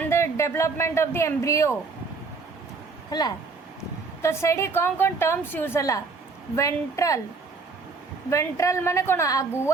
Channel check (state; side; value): quieter; left; 4.3 dB